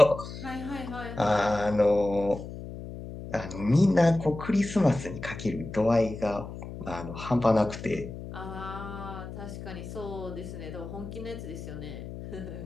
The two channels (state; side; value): noise; left; hum, 10 dB below the sound